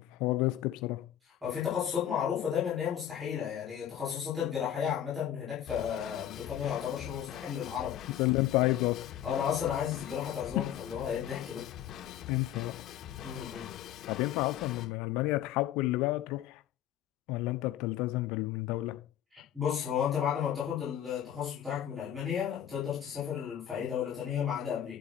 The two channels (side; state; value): right; quieter; 10.8 dB